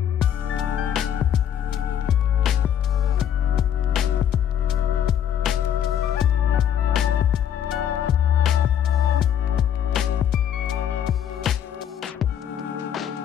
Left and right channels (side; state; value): right; quieter; 9.5 dB